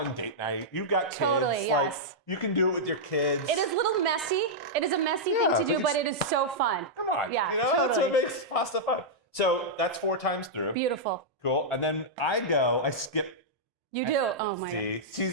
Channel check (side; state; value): both; normal; correlation -0.09